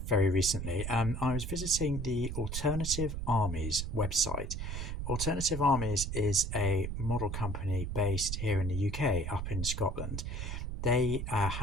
very recently. I was visiting the Alternative Armies website. Alternative Armies is a model company based here in the UK, up in Scotland. They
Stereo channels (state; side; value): noise; right; rumble, 4 dB below the sound